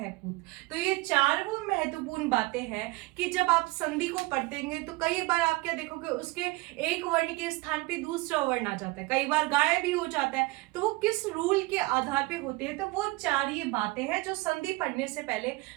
पूत। तो ये चार वो महत्वपूर्ण बातें हैं कि जब आप संधि को पढ़तेंगे तो कई बार आप क्या देखोगे, उसके एक वर्ण के स्थान पे दूसरा वर्ण आ जाता है, कई बार गायब भी हो जाता है, तो वो किस रूल के आधार पे होते हैं। तो वो चार ये बातें हैं जो संधि पढ़ने से पहले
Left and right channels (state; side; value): quieter; left; 22.3 dB